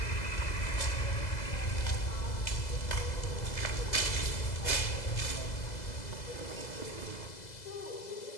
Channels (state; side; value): late; right; 2.0 ms